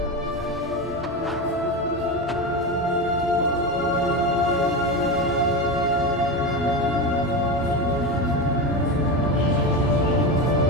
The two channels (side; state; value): both; normal; correlation 0.19